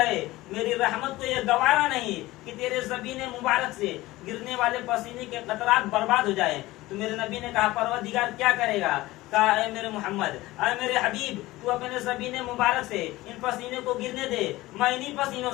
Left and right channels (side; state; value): right; quieter; 18.4 dB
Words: میری رحمت کو یہ گوارا نہیں کہ تیرے زبین مبارک سے گرنے والے پسینے کے قطرات برباد ہو جائیں۔ تو میرے نبی نے کہا پروردگار کیا کرے گا؟ کہا اے میرے محمد، اے میرے حبیب تو اپنے زبین مبارک سے ان پسینے کو گرنے دے، میں انہی پسینوں